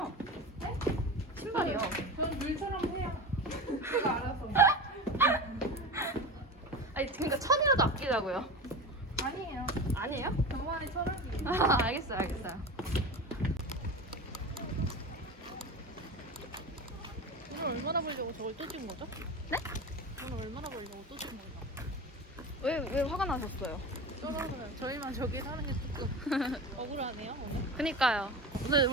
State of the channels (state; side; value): normal; both; correlation 0.28